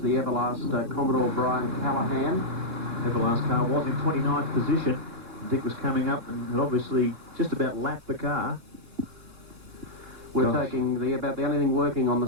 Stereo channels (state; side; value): late; left; 2.9 ms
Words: Everlast Commodore Brian Callahan. Everlast car was in 29th position. Dick was coming up and had obviously just about lapped the car. We're taking about the only thing working on the